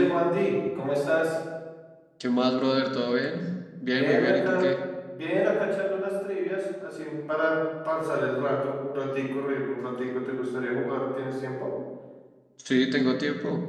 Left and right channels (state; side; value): identical; both; correlation 1.00